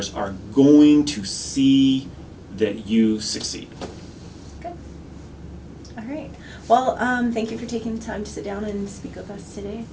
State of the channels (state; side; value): identical; both; correlation 1.00